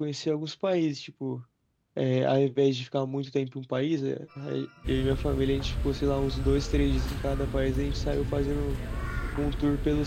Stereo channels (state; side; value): identical; both; correlation 1.00